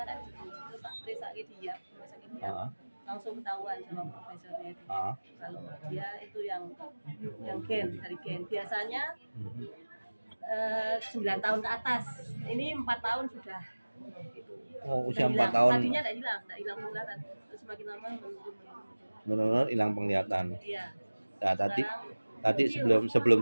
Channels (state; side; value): inverted; both; correlation -1.00